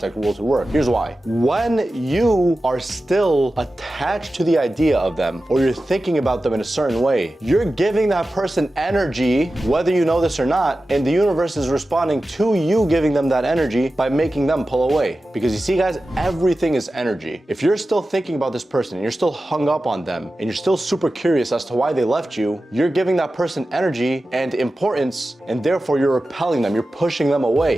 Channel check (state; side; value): normal; both; correlation 0.94